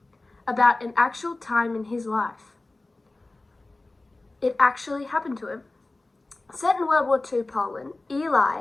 about an actual time in his life. It actually happened to him. Set in World War II Poland,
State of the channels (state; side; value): quieter; right; 3.0 dB